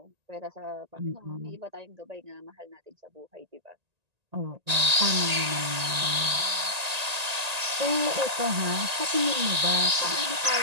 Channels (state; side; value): late; left; 1.8 ms